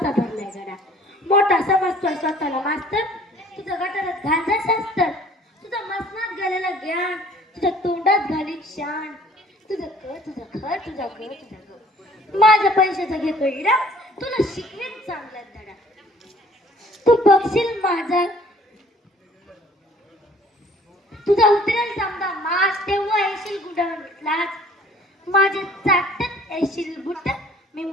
भरलाय गडा. मोठा समजतोय स्वतःला मास्तर, तुझं गटारात घालजा शास्त्र. तुझं मसनात गेलेलं ज्ञान तुझ्या तोंडात घालीन शान. तुझं घर तुझं घर तुझं घर तुझं घर, माझ्या पैशाचा घे कळीला. तुला शिकवीन चांगला धडा. तू बघशील माझा, तुझा उतरेल समजा मास, तेव्हा येशील गुडालाच. माझे चाटत येशील बुट. मी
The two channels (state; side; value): normal; both; correlation 0.55